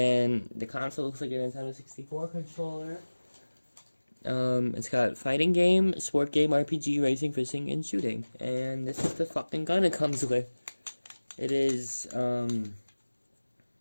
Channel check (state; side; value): inverted; both; correlation -1.00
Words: the console looks like a Nintendo 64 controller. It's got fighting game, sport game, RPG, racing, fishing, and shooting. And this is the fucking gun it comes with. It is, an